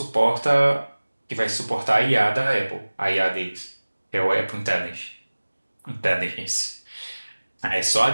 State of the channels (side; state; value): both; inverted; correlation -1.00